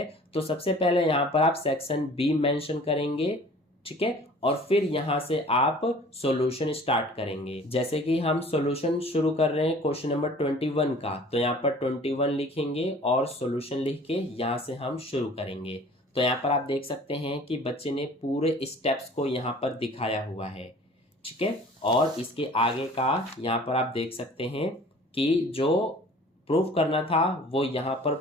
तो सबसे पहले यहाँ पर आप सेक्शन बी मेंशन करेंगे। ठीक है, और फिर यहाँ से आप सॉल्यूशन स्टार्ट करेंगे। जैसे कि हम सॉल्यूशन शुरू कर रहे हैं क्वेश्चन नंबर 21 का, तो यहाँ पर 21 लिखेंगे और सॉल्यूशन लिख के यहाँ से हम शुरू करेंगे। तो यहाँ पर आप देख सकते हैं कि बच्चे ने पूरे स्टेप्स को यहाँ पर दिखाया हुआ है। ठीक है, और इसके आगे का यहाँ पर आप देख सकते हैं कि जो प्रूफ करना था वो यहाँ पर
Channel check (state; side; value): normal; both; correlation 0.48